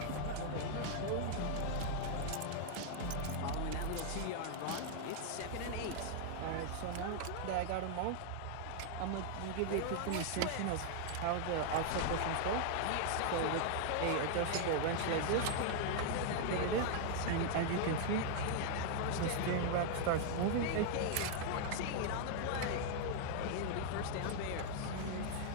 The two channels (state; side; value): different; both; correlation 0.00